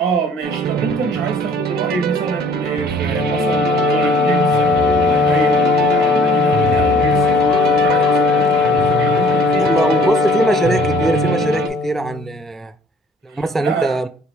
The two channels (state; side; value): normal; both; correlation 0.54